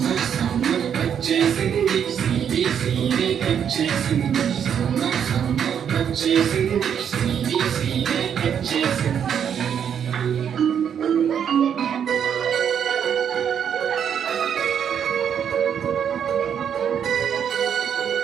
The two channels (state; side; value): quieter; left; 8.3 dB